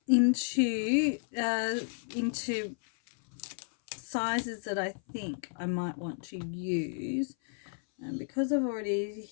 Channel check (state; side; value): silent; right; 56 dB below the other